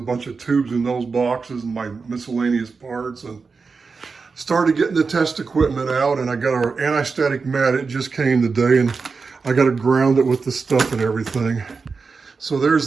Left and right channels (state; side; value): quieter; left; 4.7 dB